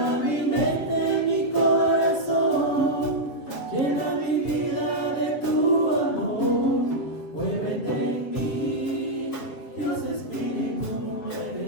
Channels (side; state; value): right; late; 7.9 ms